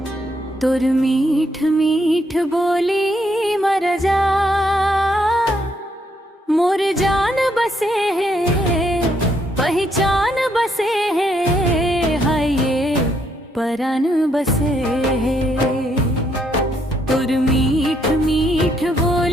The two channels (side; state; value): both; normal; correlation 0.74